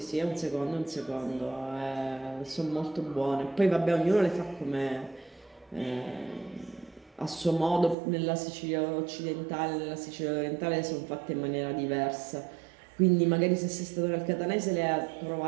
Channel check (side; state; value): left; drops out; at 8.0 s